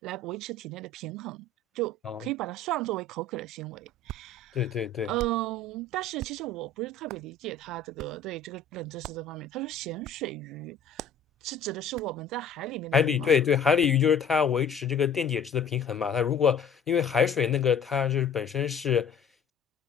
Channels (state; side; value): quieter; right; 4.0 dB